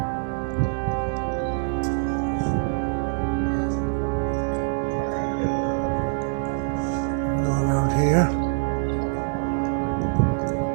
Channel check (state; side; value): silent; left; 62 dB below the other